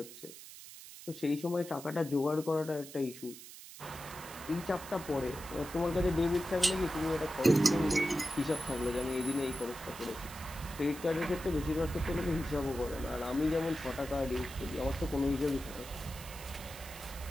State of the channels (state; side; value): noise; right; hiss, 15 dB below the sound